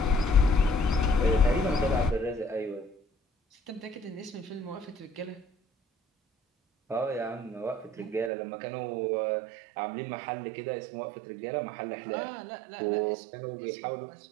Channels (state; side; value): drops out; left; at 8.3 s